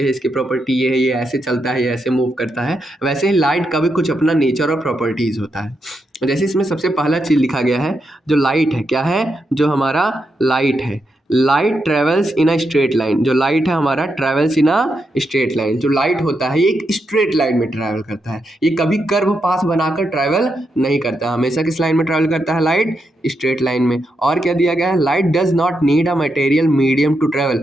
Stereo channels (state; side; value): normal; both; correlation 0.83